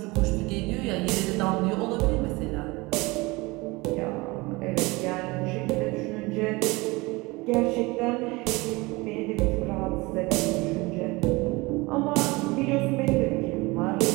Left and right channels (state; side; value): quieter; left; 23.5 dB